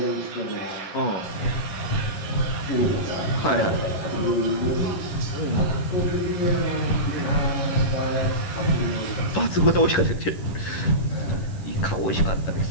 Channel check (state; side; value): late; right; 11 ms